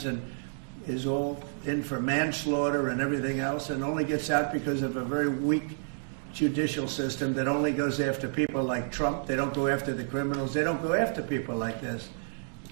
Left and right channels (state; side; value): silent; left; digital silence